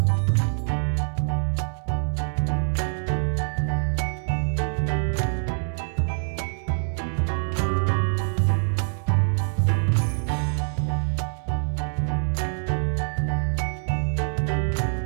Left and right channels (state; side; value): silent; left; 62 dB below the other